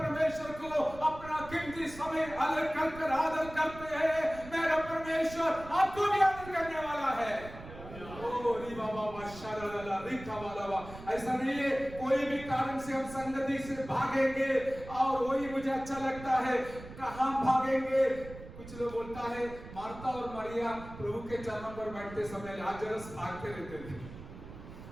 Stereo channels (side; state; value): right; noise; rumble, 15 dB below the sound